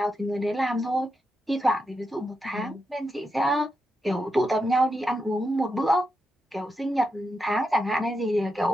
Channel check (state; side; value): normal; both; correlation 0.86